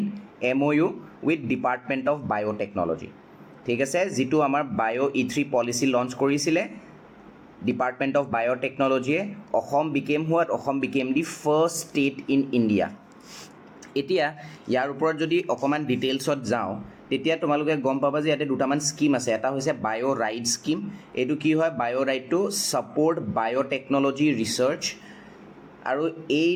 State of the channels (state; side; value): identical; both; correlation 1.00